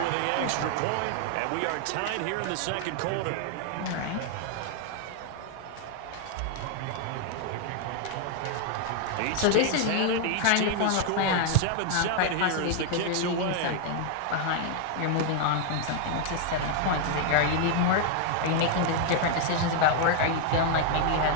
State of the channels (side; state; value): both; different; correlation 0.00